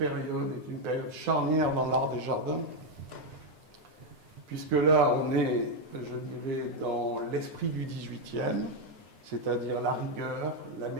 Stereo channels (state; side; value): late; left; 9.7 ms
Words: est une période charnière dans l'art des jardins, puisque là, on est, je dirais, dans l'esprit du 18e, c'est-à-dire la rigueur, la